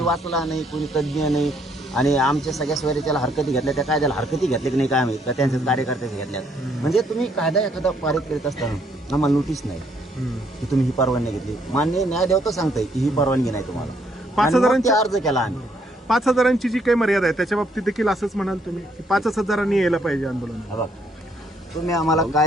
वाचला नाही कोणी तज्ज्ञ नाही आणि आमच्या सगळ्या सोयरीच्याला हरकती घेतल्या त्या कायद्याला हरकती घेतल्या की नाही काय माहित का त्यांच्या कार्यकर्त्याच्या घेतल्यात म्हणजे तुम्ही कायदा एखादा पारित करीत असताना आम्हाला नोटीस नाही की तुम्ही ही परवानगी घेतली मान्य न्यायदेवता सांगताय की ही परवानगी नाही तुम्हाला 5,000 अर्ज केला आम्ही 5,000ची जी काही मर्यादा आहे त्याच्या बाबतीत देखील असंच म्हणाल तुम्ही की 5,000 यायला पाहिजे आंदोलन तुम्ही आम्हाला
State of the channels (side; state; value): both; normal; correlation 0.69